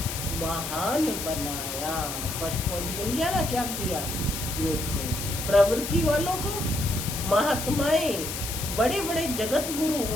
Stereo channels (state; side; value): noise; left; hiss, 5 dB below the sound